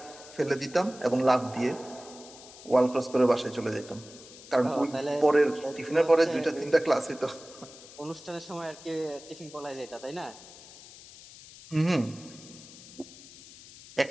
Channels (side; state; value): left; noise; hiss, 18 dB below the sound